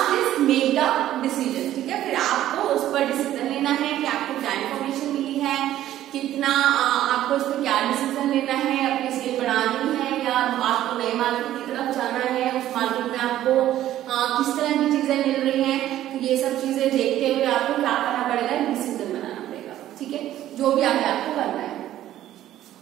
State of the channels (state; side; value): quieter; left; 12.9 dB